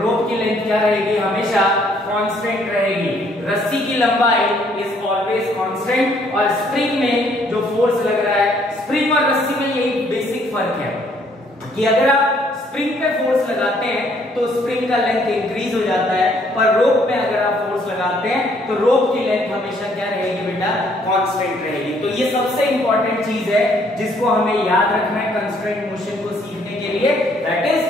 की लेंथ क्या रहेगी, हमेशा कांस्टेंट रहेगी। रस्सी की लंबाई इज ऑलवेज कांस्टेंट, और स्प्रिंग में जो फोर्स लग रहा है, स्प्रिंग और रस्सी में यही बेसिक फर्क है कि अगर आप स्प्रिंग पे फोर्स लगाते हैं तो स्प्रिंग का लेंथ इंक्रीज हो जाता है, पर रोप में अगर आप फोर्स लगाते हैं तो रोप की लेंथ हमेशा क्या रहेगी बेटा, कांस्टेंट रहेगी। तो ये सबसे इंपॉर्टेंट चीज है जिसको हमें याद रखना है कंस्ट्रेंट मोशन को सीखने के लिए, that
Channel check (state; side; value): normal; both; correlation 0.65